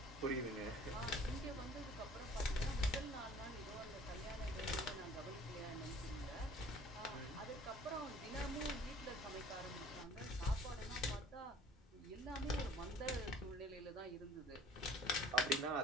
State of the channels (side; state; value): both; normal; correlation 0.49